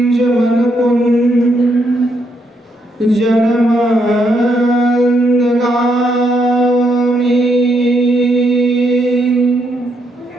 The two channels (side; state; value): both; normal; correlation 0.76